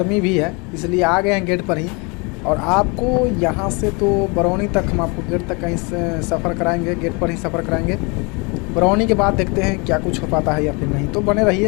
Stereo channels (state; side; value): quieter; right; 30.3 dB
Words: भी है, इसलिए आ गए हैं गेट पर ही। और आपको यहाँ से तो बरौनी तक हम आपको गेट तक कहीं से सफ़र कराएंगे, गेट पर ही सफ़र कराएंगे। बरौनी के बाद देखते हैं क्या कुछ हो पाता है या फिर नहीं, तो बने